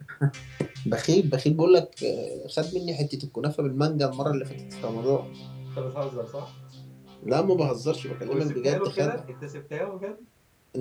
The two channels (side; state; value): both; identical; correlation 1.00